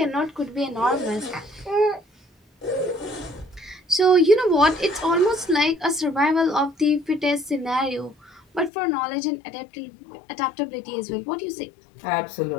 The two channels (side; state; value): right; drops out; at 8.7 s